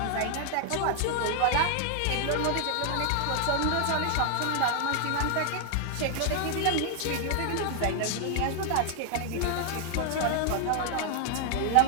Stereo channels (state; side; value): different; both; correlation 0.00